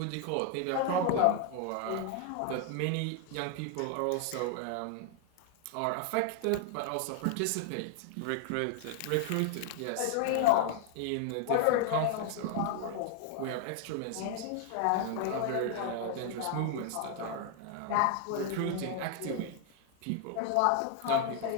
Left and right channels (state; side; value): different; both; correlation 0.00